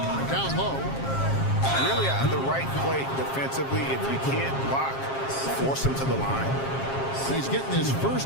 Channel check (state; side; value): late; right; 7.4 ms